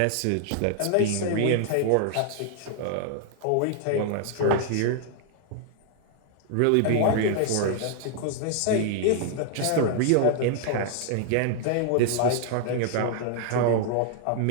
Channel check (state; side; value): different; both; correlation 0.00